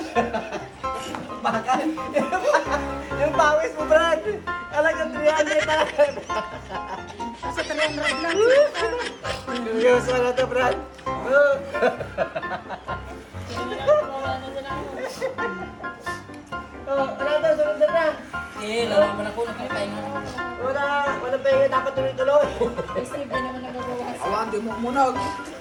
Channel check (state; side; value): identical; both; correlation 1.00